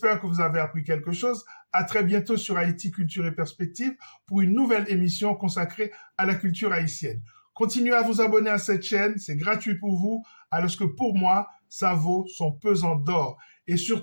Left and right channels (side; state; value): both; inverted; correlation -1.00